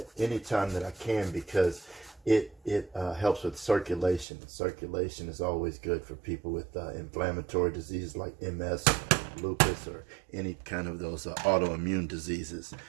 anytime that I can because it helps with circulation. Circulation is always good for people with inflammatory diseases like MS, lupus, or any kind of those autoimmune diseases.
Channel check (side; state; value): left; drops out; at 4.2 s